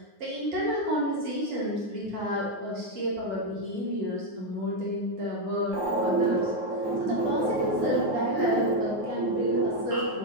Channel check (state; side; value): late; left; 9.4 ms